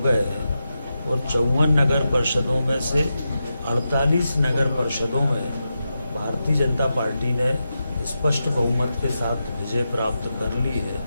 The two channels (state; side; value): inverted; both; correlation -0.89